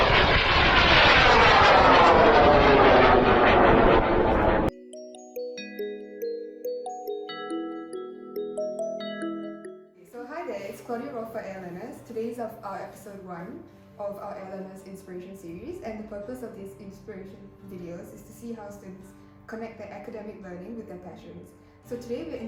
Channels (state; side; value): identical; both; correlation 1.00